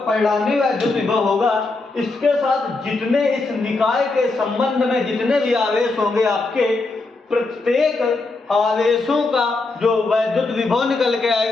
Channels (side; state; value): right; quieter; 3.5 dB